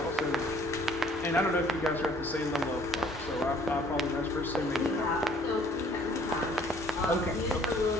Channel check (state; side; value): normal; both; correlation 0.57